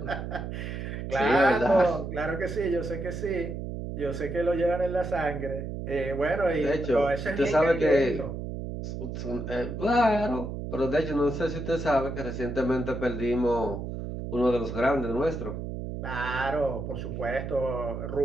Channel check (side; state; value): right; noise; hum, 6 dB below the sound